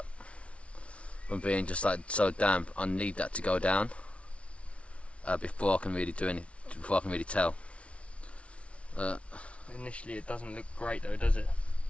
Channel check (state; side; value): late; right; 0.062 ms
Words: from being just like so damp. I need that to go down before I can really do anything. Before I can really tell. Initially, it doesn't look great though, does it?